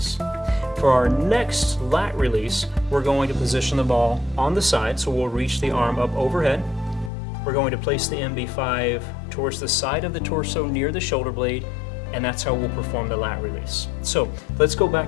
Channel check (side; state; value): right; drops out; at 7.1 s